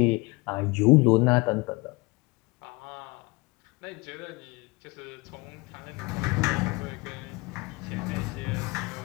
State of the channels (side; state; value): right; quieter; 25.3 dB